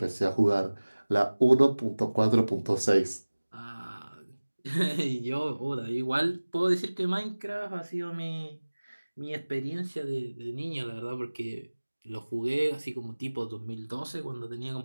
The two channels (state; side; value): inverted; both; correlation -1.00